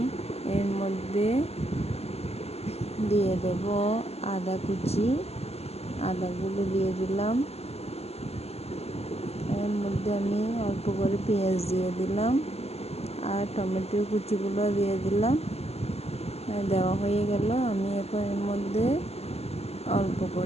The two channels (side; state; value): right; late; 0.30 ms